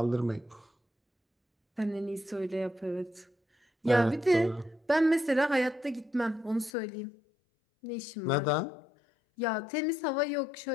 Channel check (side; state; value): right; drops out; at 6.7 s